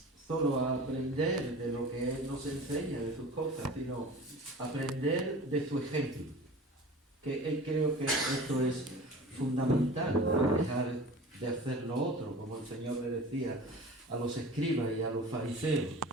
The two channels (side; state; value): both; normal; correlation 0.38